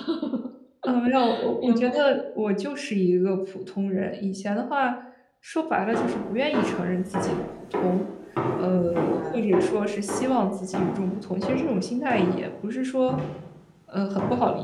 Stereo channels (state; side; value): identical; both; correlation 1.00